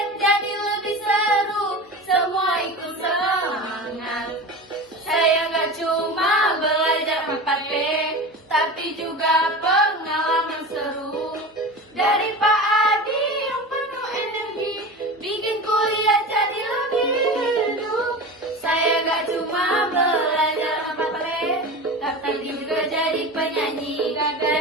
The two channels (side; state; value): both; normal; correlation 0.30